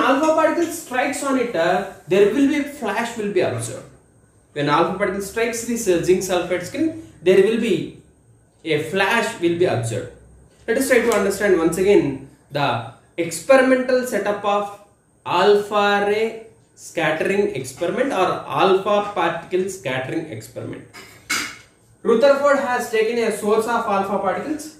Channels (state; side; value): identical; both; correlation 1.00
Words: particle strikes on it, there will be flash will be observed. When alpha particle strikes this zinc sulfide screen, there will be a flash will be observed. Let us try to understand once again the experimental setup of alpha ray scattering experiment or alpha particle scattering experiment. Rutherford has taken a source of alpha particles.